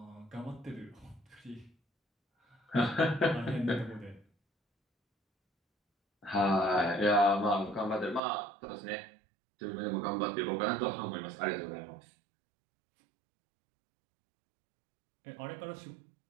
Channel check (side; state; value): left; drops out; at 8.2 s